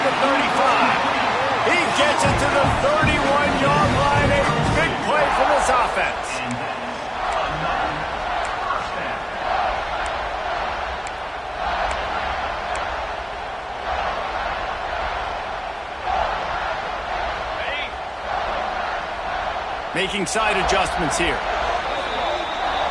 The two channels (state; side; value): identical; both; correlation 1.00